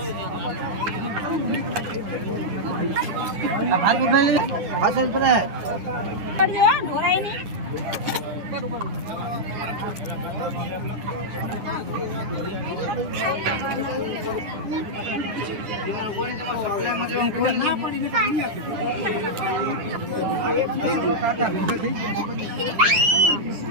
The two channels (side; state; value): left; late; 9.8 ms